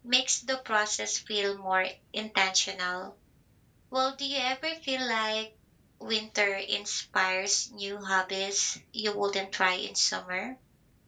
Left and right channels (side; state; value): both; identical; correlation 1.00